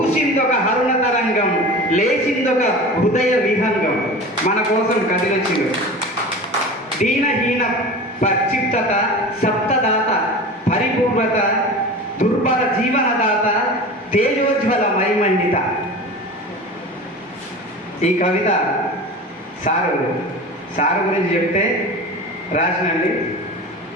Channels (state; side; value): normal; both; correlation 0.33